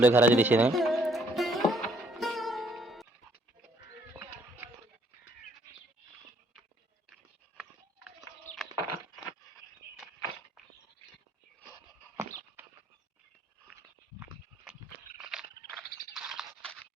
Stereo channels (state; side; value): normal; both; correlation 0.66